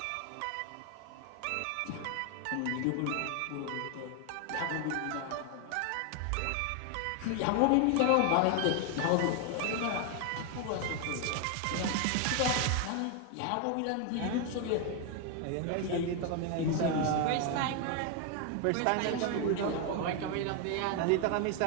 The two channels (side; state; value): both; different; correlation 0.01